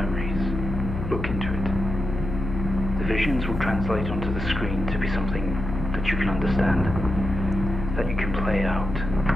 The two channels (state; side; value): noise; left; hum, 5 dB below the sound